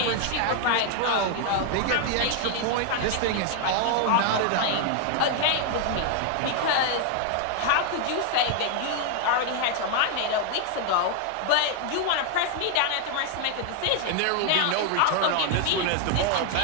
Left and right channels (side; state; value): both; different; correlation 0.00